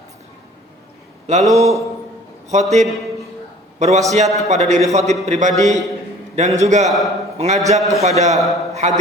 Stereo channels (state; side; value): normal; both; correlation 0.50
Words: Lalu khotib berwasiat kepada diri khotib pribadi dan juga mengajak kepada